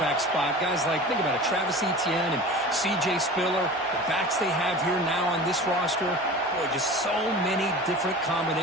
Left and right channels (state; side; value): normal; both; correlation 0.36